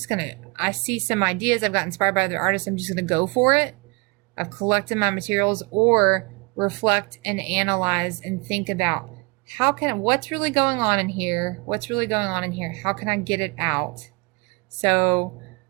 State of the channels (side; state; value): left; quieter; 28.8 dB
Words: see some ideas, I've got inspired by other artists, I'm just going to go for it. I've collected my materials, or reflect and analyze and think about what's really going on in here? What's really going on in here? How can I get it out? So